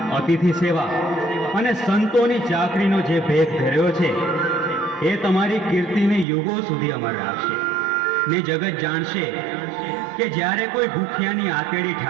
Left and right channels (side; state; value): left; drops out; at 6.2 s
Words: અતિથિ સેવા અને સંતોની ચાકરીનો જે ભેદ ધર્યો છે એ તમારી કીર્તિને યુગો સુધી અમર રાખશે. ને જગત જાણશે કે જ્યારે કોઈ ભૂખ્યાની આતેડી